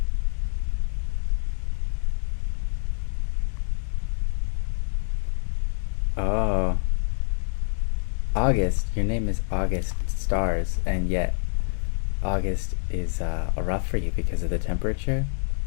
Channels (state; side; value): silent; right; digital silence